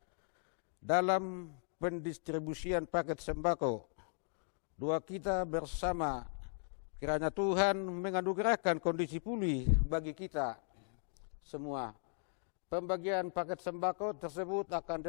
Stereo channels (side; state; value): right; silent; 53 dB below the other